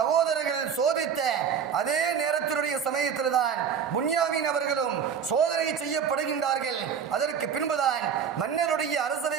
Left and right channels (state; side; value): quieter; left; 7.3 dB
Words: சோதித்த அதே நேரத்தினுடைய சமயத்தில் தான் புன்யாமீன் அவர்களும் சோதனை செய்யப்படுகின்றார்கள். அதற்கு பின்புதான் மன்னருடைய